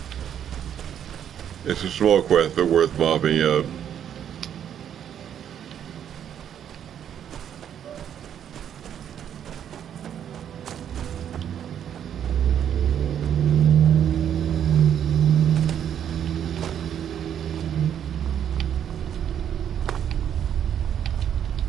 It's a small quest, but worth mopping up.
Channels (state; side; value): quieter; left; 9.4 dB